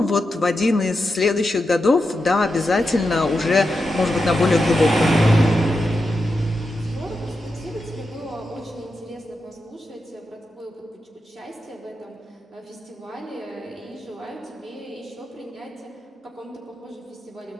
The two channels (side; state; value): both; normal; correlation 0.88